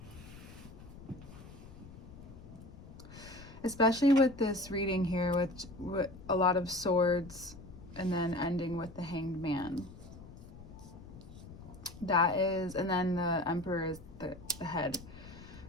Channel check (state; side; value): noise; left; rumble, 16 dB below the sound